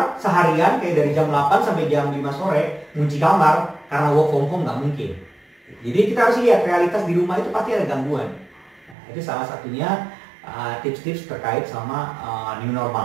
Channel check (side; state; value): left; drops out; at 9.0 s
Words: seharian kayak dari jam 8 sampai jam 5 sore ngunci kamar karena work from home, nggak mungkin. Jadi kita harus lihat realitas di rumah itu pasti ada gangguan. Itu salah satunya tips-tips terkait sama new